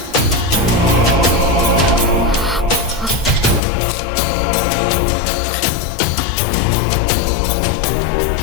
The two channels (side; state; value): right; drops out; at 3.6 s